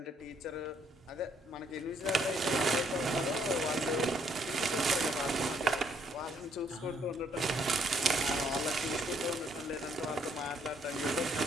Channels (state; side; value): normal; both; correlation 0.69